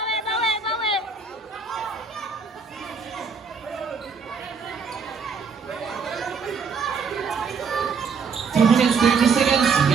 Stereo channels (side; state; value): left; quieter; 5.3 dB